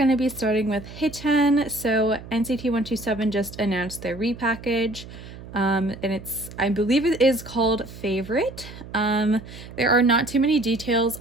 to be starting with Hichan. So NCT 127 just announced their repackage, and I believe it is called Favorite. There are not too many details.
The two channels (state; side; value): noise; right; hum, 15 dB below the sound